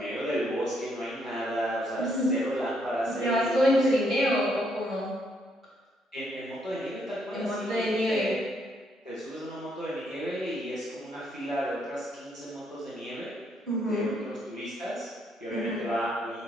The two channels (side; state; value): both; normal; correlation 0.73